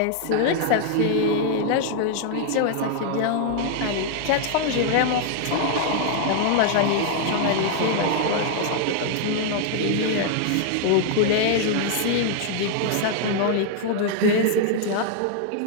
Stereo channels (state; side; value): different; both; correlation 0.00